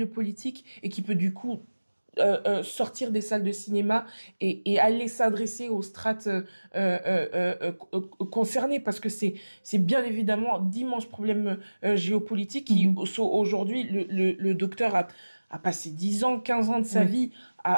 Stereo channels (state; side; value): inverted; both; correlation -1.00